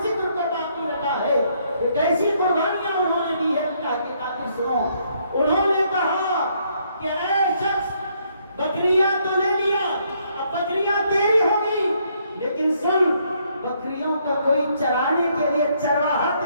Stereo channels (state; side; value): inverted; both; correlation -0.71